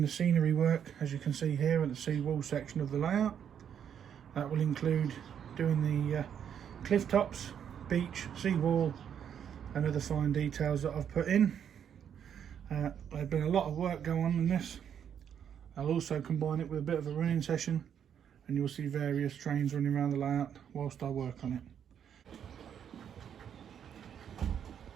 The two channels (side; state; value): left; quieter; 8.6 dB